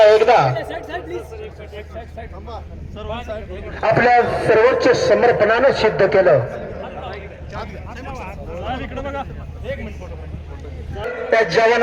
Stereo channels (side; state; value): both; identical; correlation 1.00